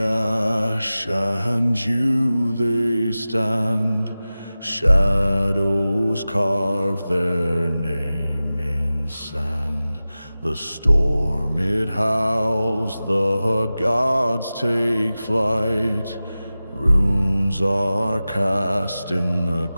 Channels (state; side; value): inverted; both; correlation -0.96